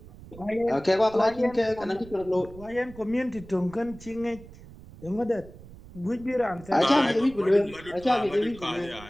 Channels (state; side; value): noise; right; rumble, 19 dB below the sound